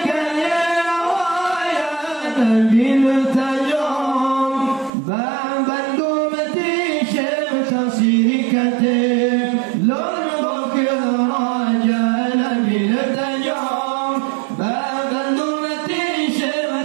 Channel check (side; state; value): left; drops out; at 4.9 s